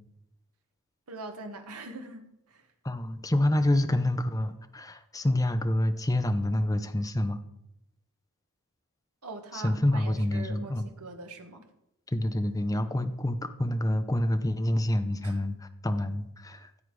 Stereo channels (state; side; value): normal; both; correlation 0.94